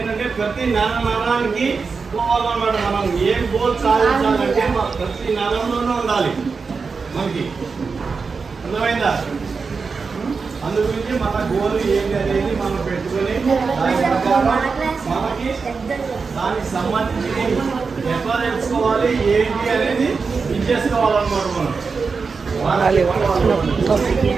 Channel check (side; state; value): left; quieter; 4.9 dB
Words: ప్రతి నరానికి పోవాలన్నమాట. మనం ఏం గోల్ సాధించాలంటే ప్రతి నరంలోనే ఉండాలి మనకి, అర్థమైందా? అందు గురించి మన గోల్ ఏంటి అనేది మనం పెట్టుకొని దాని ప్రకారం మనకి దానికి సంబంధించి ఎట్లా తెలుసుకోవాలి ఏంటి అనేది ఇది చేసుకోవాలన్నమాట. మనం